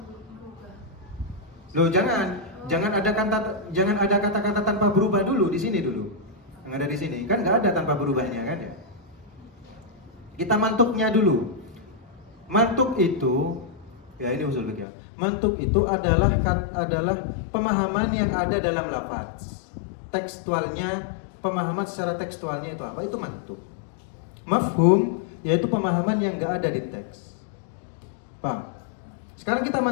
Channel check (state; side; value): drops out; right; at 14.9 s